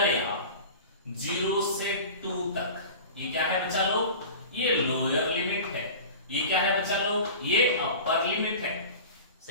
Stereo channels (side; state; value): both; inverted; correlation -0.36